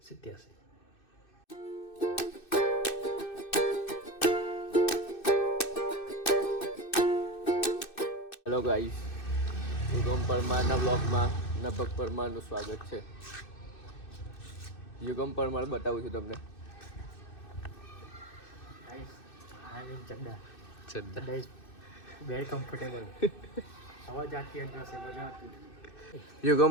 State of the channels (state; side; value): late; right; 2.6 ms